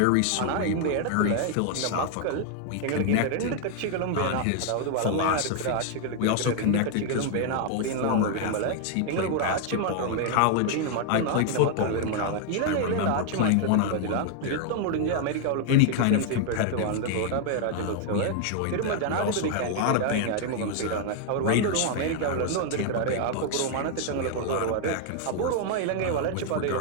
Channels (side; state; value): both; different; correlation 0.00